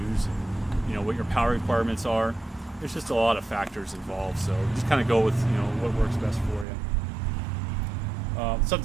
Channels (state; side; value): drops out; left; at 6.7 s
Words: and what your power requirements are. There's just a lot of factors involved, so just kind of go with what works best for you.